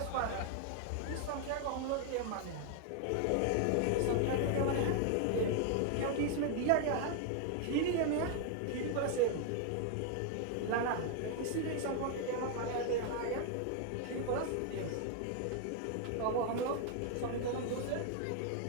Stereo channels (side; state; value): both; different; correlation 0.00